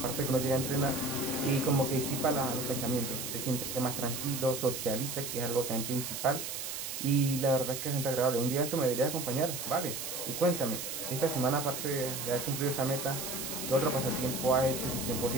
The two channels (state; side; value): noise; right; hiss, 5 dB below the sound